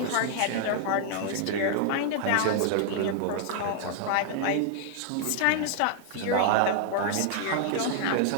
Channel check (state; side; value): different; both; correlation -0.01